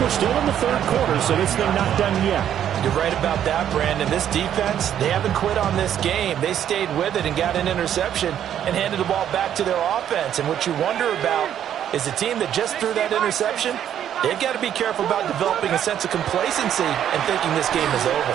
we're still in the third quarter, so this thing not done yet. You're right about that, Brandon. This defense, they haven't quit on this game. They stayed with it and got an interception and handed the ball back to their offense. And what you wonder about is the team that just threw that interception, they've got to be careful about developing a sense of complacency and thinking this game is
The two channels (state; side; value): quieter; left; 10.1 dB